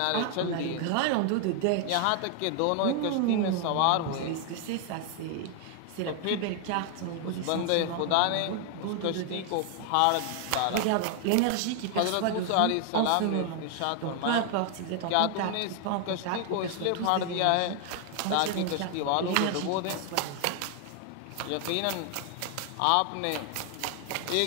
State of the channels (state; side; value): different; both; correlation 0.00